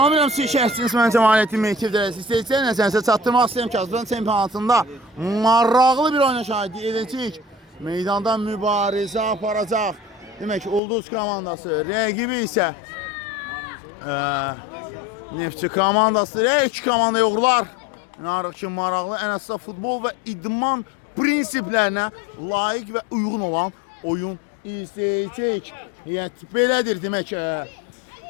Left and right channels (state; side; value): drops out; right; at 10.8 s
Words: siz şəhsiniz, mən Cəmaləddin Mehtiv dərəsi istəyəcək. Nəsənsə çatdırmaq istəyirəm ki, Azərbaycan çempionatında maraqlı bir oyuna şahidi edəcək. Meydanda mübarizə aparacaq. Demək ki, Ulduz komandası, rəqibi isə Neftçi komandası, iki komanda yoxlar. İnanırıq ki, maraqlı, ən əsasda futbol və idman prinsiplərinə layiq və uyğun olan oyun izləyəcək. Belədir, demək